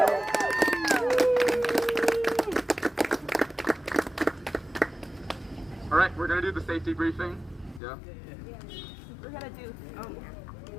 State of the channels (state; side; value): drops out; right; at 7.8 s